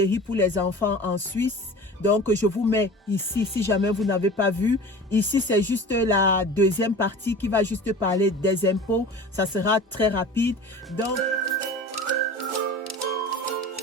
pour les enfants en Suisse. Donc, je vous mets ici, si jamais vous n'avez pas vu. Ici, c'est juste la deuxième partie qui va juste parler des impôts. Ça sera très rapide. Donc,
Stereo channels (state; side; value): normal; both; correlation 0.38